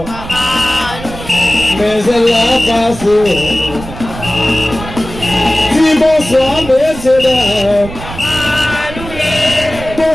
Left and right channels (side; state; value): right; noise; rumble, 12 dB below the sound